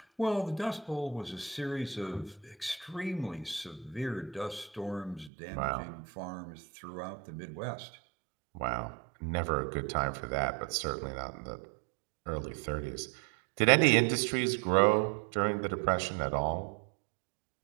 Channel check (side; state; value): left; drops out; at 5.3 s